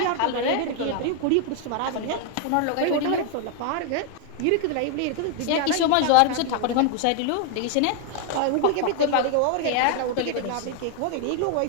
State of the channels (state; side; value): different; both; correlation 0.00